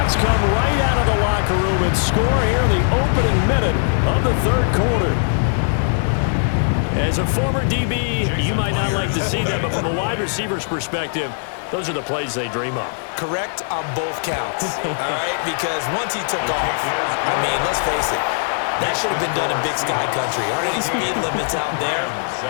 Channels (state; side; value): silent; right; 66 dB below the other